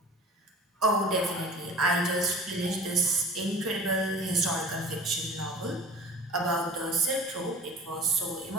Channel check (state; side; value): normal; both; correlation 0.42